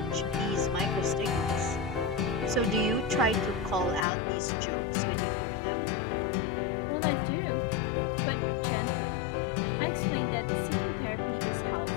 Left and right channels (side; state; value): right; drops out; at 4.0 s